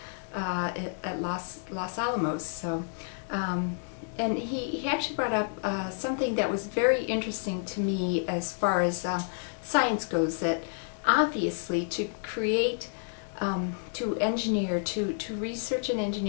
at Los Alamos. So. And he actually brought up something that was very interesting to me as far as science goes, that obviously to create to engineer, to research and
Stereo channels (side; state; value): right; silent; digital silence